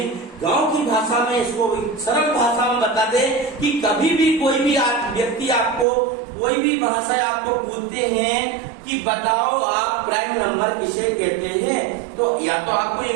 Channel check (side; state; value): left; drops out; at 5.9 s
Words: गांव की भाषा में, इसको सरल भाषा में बता दें कि कभी भी कोई भी व्यक्ति आपको कोई भी भाषा आपको पूछते हैं कि बताओ आप प्राइम नंबर किसे कहते हैं, तो या तो आपको